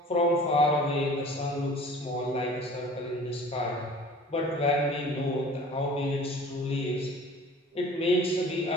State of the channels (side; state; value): both; normal; correlation 0.46